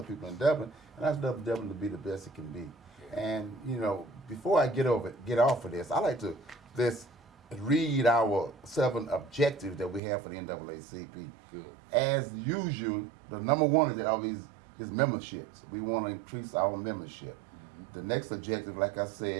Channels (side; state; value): left; drops out; at 10.0 s